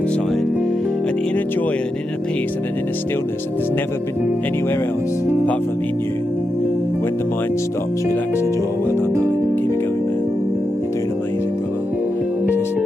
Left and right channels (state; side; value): normal; both; correlation 0.86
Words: an inner joy and an inner peace and an inner stillness that there's never been anywhere else apart from in you. When the mind stops, relax the jaw. Well done, darling. Keep it going, man. You're doing amazing, brother. Just